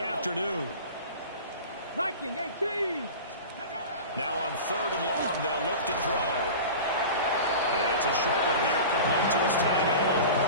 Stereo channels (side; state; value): both; inverted; correlation -0.34